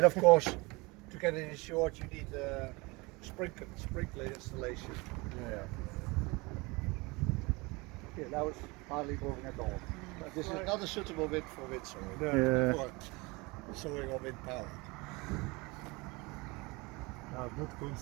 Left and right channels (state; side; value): quieter; left; 25.2 dB